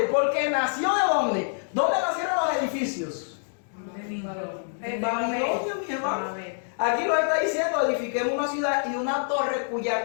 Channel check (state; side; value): silent; right; digital silence